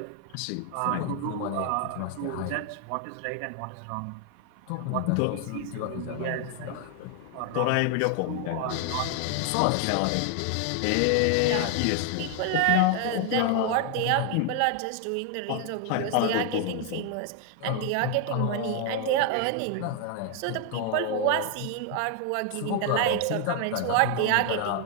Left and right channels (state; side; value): different; both; correlation 0.00